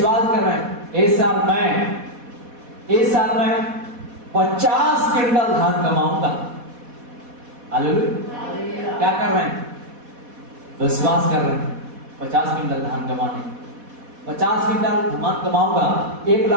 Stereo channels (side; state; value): left; late; 4.1 ms